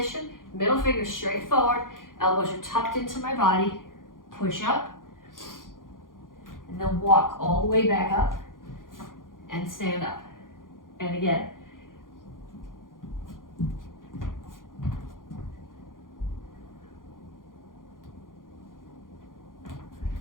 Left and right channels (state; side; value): late; right; 0.90 ms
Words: middle finger straight forward. Elbows are tucked into my body. Push up. And then walk all the way back up and stand up. And again.